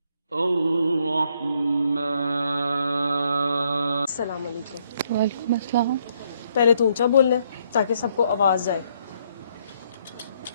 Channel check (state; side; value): inverted; both; correlation -0.71